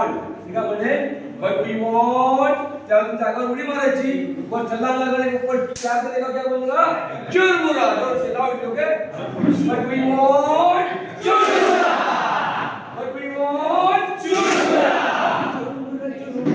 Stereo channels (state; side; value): identical; both; correlation 1.00